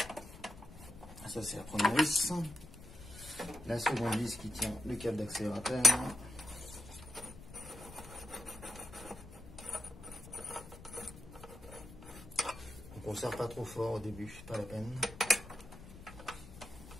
Ça c'est la première vis. La seconde vis qui tient le câble d'accélérateur. Donc on ne serre pas trop fort au début, pas la peine.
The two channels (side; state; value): left; noise; rumble, 16 dB below the sound